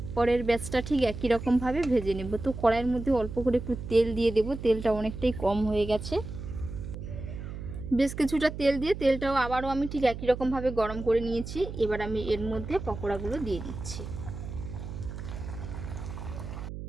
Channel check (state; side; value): noise; right; hum, 9 dB below the sound